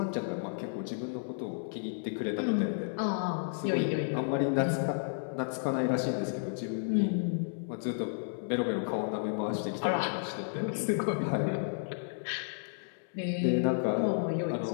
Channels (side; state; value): right; silent; 56 dB below the other